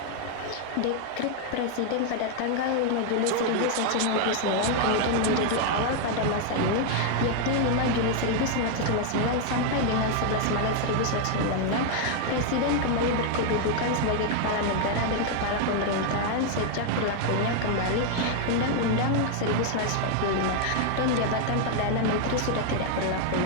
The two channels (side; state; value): both; different; correlation 0.00